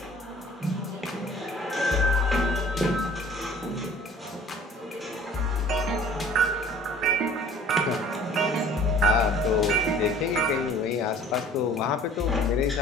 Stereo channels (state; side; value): normal; both; correlation 0.50